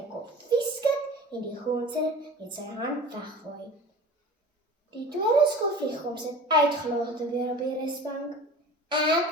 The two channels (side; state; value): both; normal; correlation 0.40